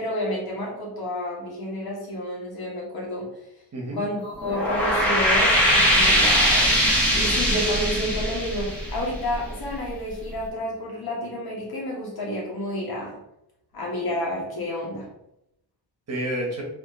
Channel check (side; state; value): both; normal; correlation 0.13